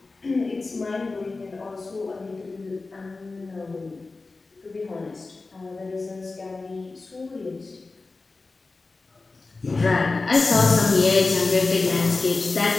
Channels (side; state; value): right; quieter; 3.7 dB